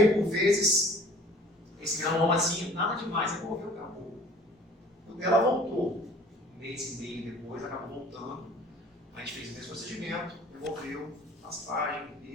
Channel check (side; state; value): both; normal; correlation 0.49